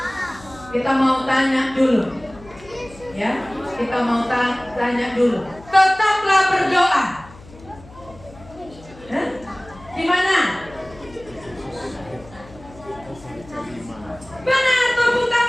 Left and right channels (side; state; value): left; noise; hum, 21 dB below the sound